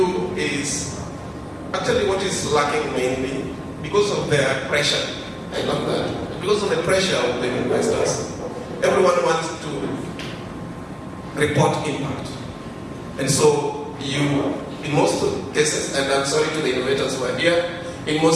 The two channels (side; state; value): both; identical; correlation 1.00